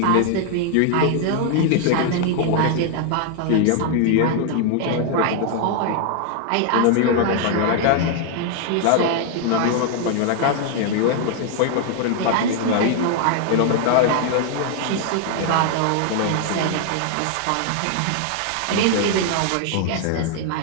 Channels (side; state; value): both; different; correlation 0.00